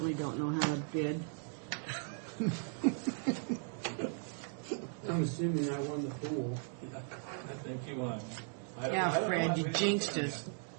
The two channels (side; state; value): left; silent; 53 dB below the other